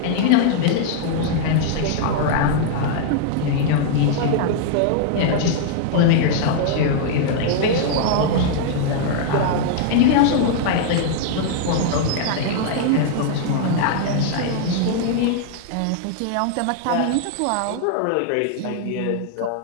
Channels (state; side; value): different; both; correlation -0.01